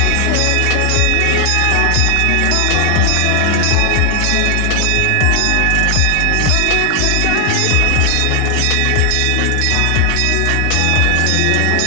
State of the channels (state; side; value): different; both; correlation 0.00